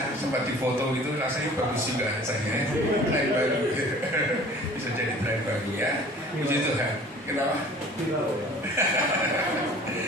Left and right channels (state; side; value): normal; both; correlation 0.47